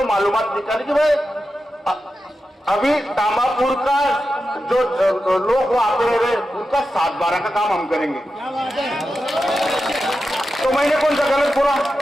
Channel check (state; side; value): normal; both; correlation 0.90